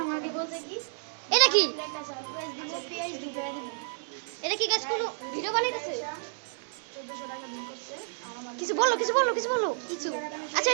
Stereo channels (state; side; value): silent; left; digital silence